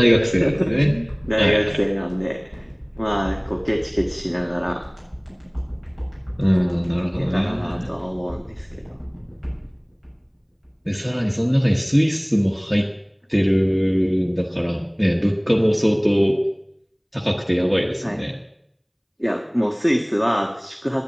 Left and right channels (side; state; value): both; identical; correlation 1.00